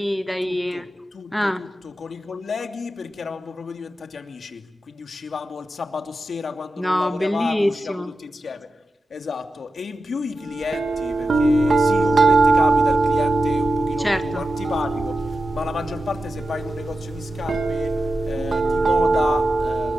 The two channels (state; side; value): normal; both; correlation 0.91